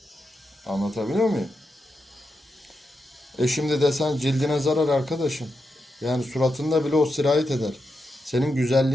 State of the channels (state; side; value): normal; both; correlation 0.87